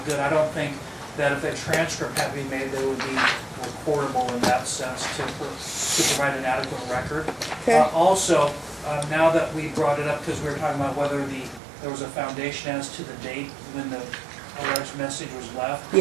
good. I don't think that if a transcript had to be made, that it would be recordable in that sense to provide an adequate record. Okay. Also, now that we brought it up, because we were talking about whether there was a foundation as to the date when the alleged message was left.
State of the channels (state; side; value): drops out; left; at 11.6 s